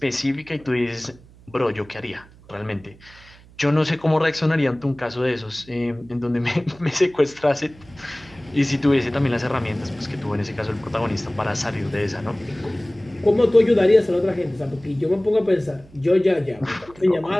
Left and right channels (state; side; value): noise; right; hum, 24 dB below the sound